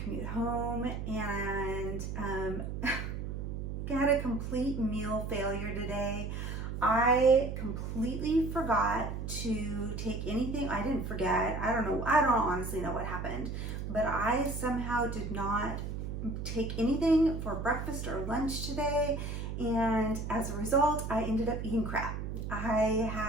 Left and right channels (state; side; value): noise; right; hum, 5 dB below the sound